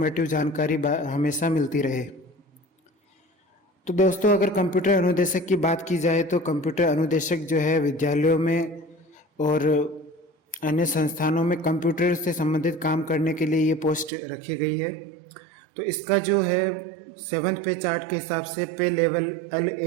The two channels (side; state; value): left; drops out; at 14.1 s